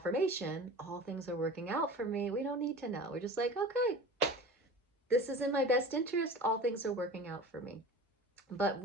all things are working out for me, we don't need to know. We're just like, okay, this is in my best interest. All things are working out for me. But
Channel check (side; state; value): both; normal; correlation 0.37